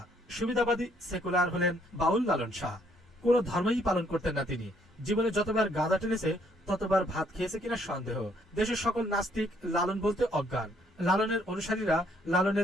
সুবিধাবাদী সেকুলার হলেন বাউল লালন শাহ। কোন ধর্মই পালন করতেন না তিনি। জীবনে যতবার গাঁজা টেনেছে ততবার ভাত খেয়েছে কিনা সন্দেহ। দেশের সকল নাস্তিক লালন বলতে অজ্ঞান। লালনের অনুসারীরা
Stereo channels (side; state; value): both; normal; correlation 0.67